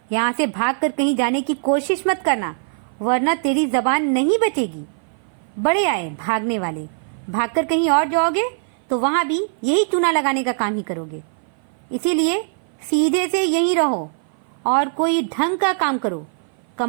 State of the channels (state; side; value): silent; left; 57 dB below the other